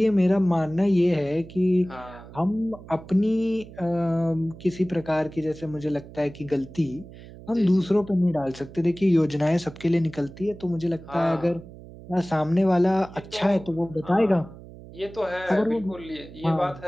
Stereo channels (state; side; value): noise; right; hum, 17 dB below the sound